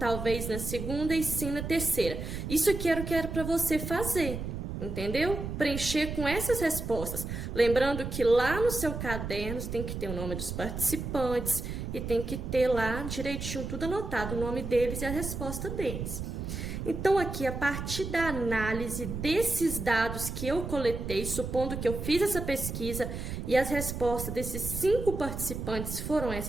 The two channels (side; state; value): right; noise; rumble, 5 dB below the sound